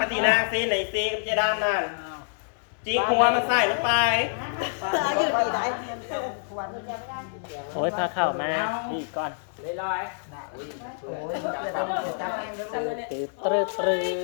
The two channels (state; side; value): silent; right; digital silence